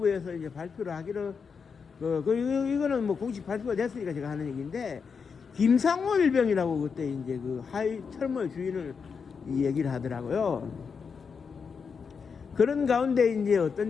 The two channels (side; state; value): right; quieter; 5.8 dB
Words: 이제 발표를 하기로 이거는 뭐 공식 발표가 됐으니까 제가 하는 얘기인데 김상호 일병이라고 그때 이제 그 하이 철모의 주인을 얘기를 하더라고요. 그런 가운데 이제